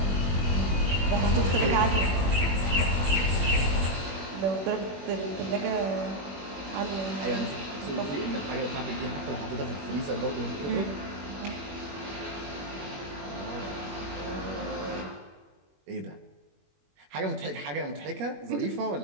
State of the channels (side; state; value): left; late; 21 ms